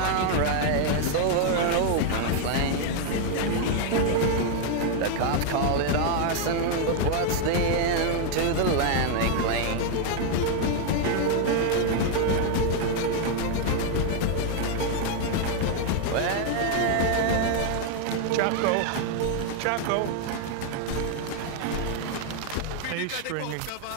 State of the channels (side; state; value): both; different; correlation 0.00